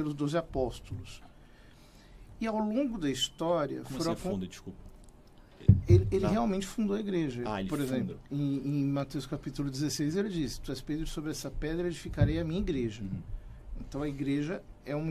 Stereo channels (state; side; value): identical; both; correlation 1.00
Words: 12 apóstolos. E ao longo da história... Como assim funda, desculpa? Ele realmente fundou a igreja. Ele Por exemplo, em Mateus capítulo 16, ele diz: tu és Pedro, sobre essa pedra edificarei a minha igreja. Então a igreja é uma